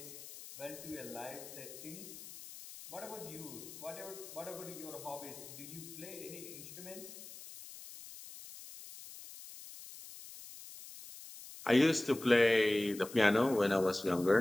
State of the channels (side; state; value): left; noise; hiss, 14 dB below the sound